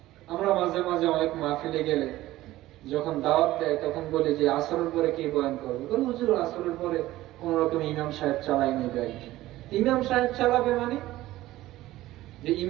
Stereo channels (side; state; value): left; quieter; 16.1 dB